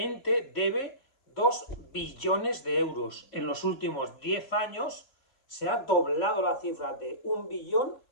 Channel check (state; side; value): late; right; 3.7 ms